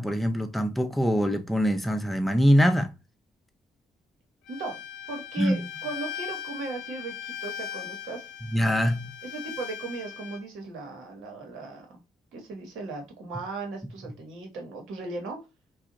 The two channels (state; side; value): normal; both; correlation 0.86